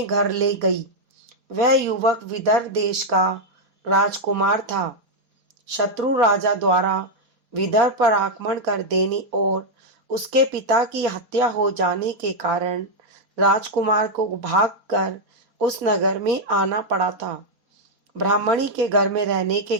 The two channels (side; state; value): left; late; 3.8 ms